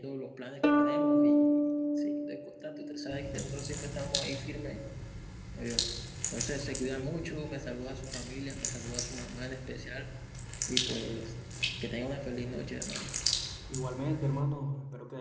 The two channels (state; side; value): identical; both; correlation 1.00